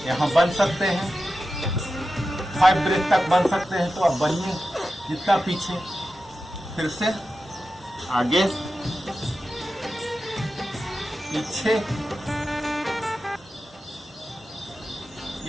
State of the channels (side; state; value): both; normal; correlation 0.92